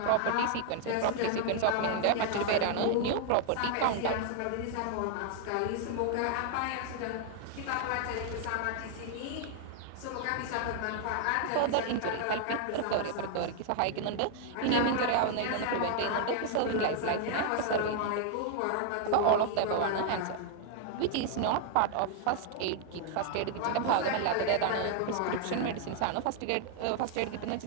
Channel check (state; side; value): different; both; correlation 0.00